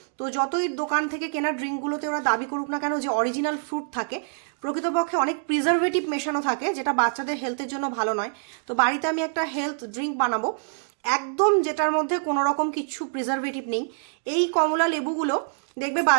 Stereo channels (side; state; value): left; silent; digital silence